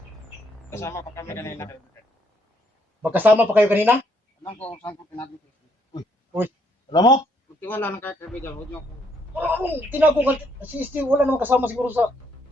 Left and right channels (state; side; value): normal; both; correlation 0.70